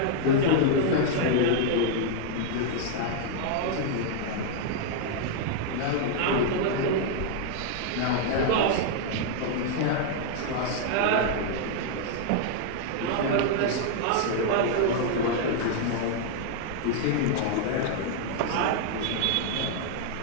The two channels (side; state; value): both; different; correlation 0.00